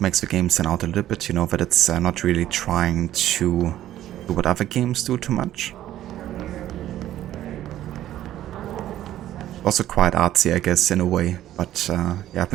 makes the game stand out a little bit, you know, that it's not really trying to do what other games do too much. Also quite artsy, I guess, in a way. But yeah, I've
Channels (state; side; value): quieter; left; 12.9 dB